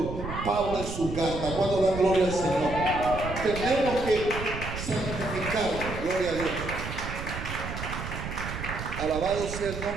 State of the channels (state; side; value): noise; right; rumble, 7 dB below the sound